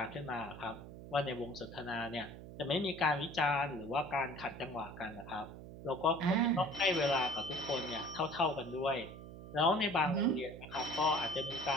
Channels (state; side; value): noise; right; hum, 13 dB below the sound